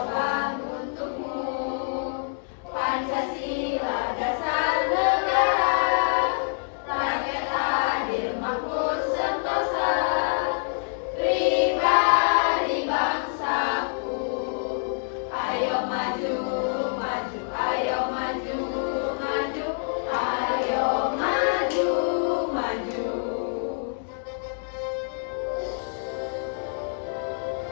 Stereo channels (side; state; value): right; silent; digital silence